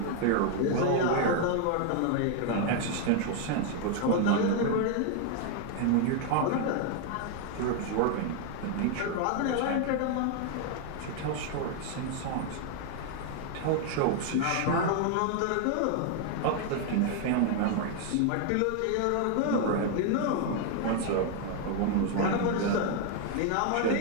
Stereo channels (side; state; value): both; different; correlation 0.00